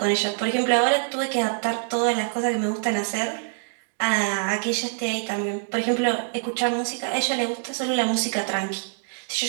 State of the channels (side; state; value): left; silent; digital silence